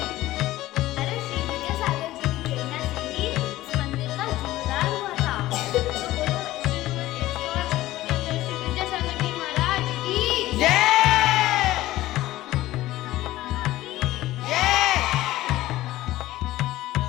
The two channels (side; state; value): right; quieter; 16.1 dB